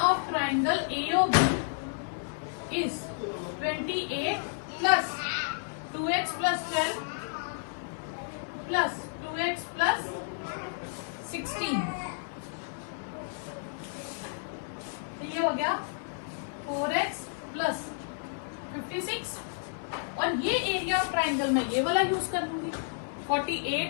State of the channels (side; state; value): right; silent; 57 dB below the other